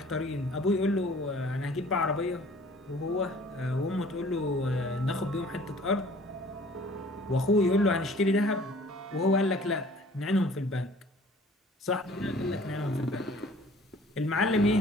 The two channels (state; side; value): normal; both; correlation 0.52